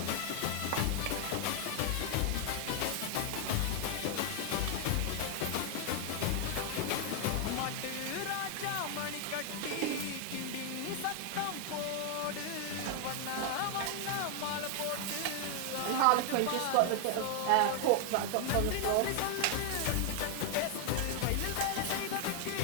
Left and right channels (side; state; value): both; different; correlation 0.00